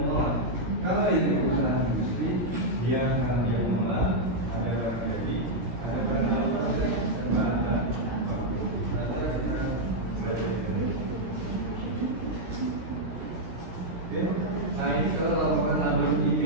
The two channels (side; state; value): left; late; 16 ms